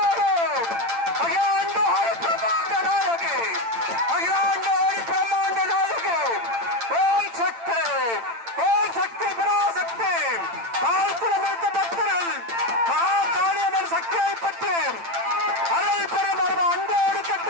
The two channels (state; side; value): late; left; 8.8 ms